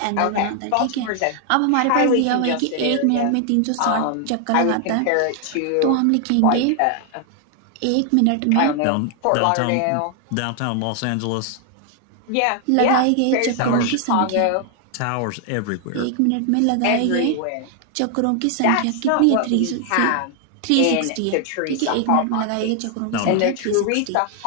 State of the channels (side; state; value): both; different; correlation 0.00